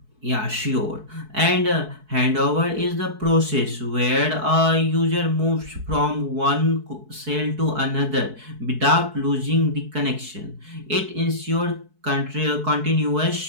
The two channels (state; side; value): late; left; 4.6 ms